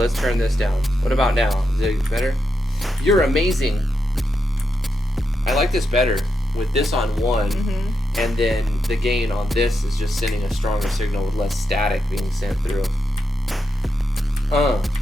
turn this down. What about now? Is it better? You're amazing. I like this better with this on 1, Mm-hmm. and then the gain on this is just sending a stronger signal with less static being sent through.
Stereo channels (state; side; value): normal; both; correlation 0.85